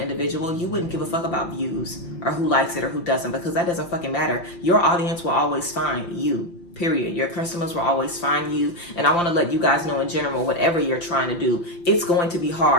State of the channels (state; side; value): late; right; 5.8 ms